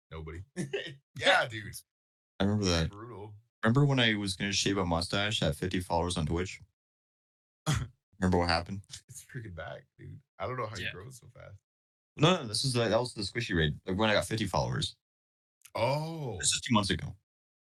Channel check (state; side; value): identical; both; correlation 1.00